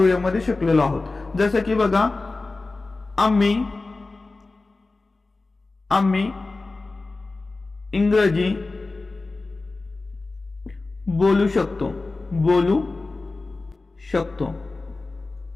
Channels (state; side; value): quieter; right; 3.4 dB